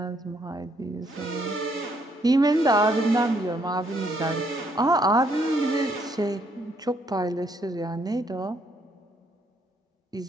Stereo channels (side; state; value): both; normal; correlation 0.71